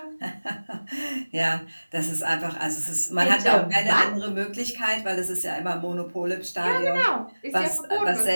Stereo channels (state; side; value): inverted; both; correlation -1.00